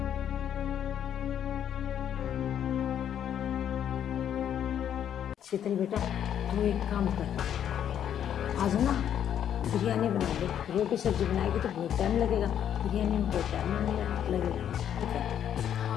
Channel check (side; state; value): right; quieter; 9.6 dB